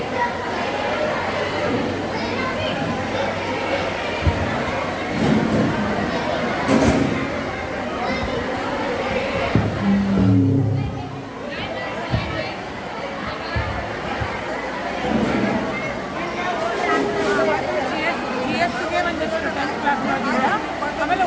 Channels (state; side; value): identical; both; correlation 1.00